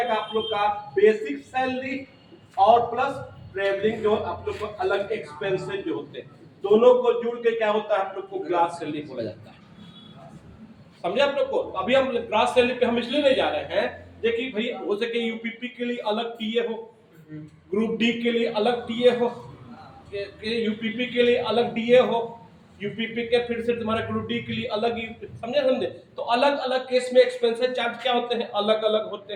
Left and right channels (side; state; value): both; identical; correlation 1.00